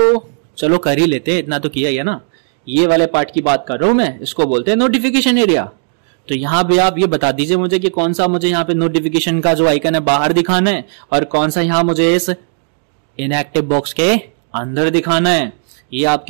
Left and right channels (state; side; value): silent; left; digital silence